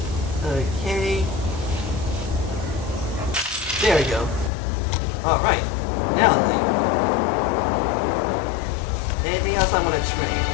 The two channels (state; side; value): drops out; right; at 4.5 s